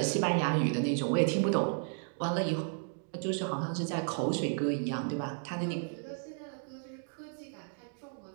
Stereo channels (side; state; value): left; silent; 55 dB below the other